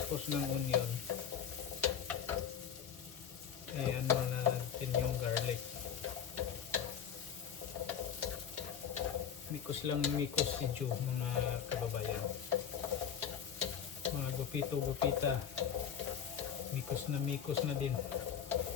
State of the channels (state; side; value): quieter; right; 8.3 dB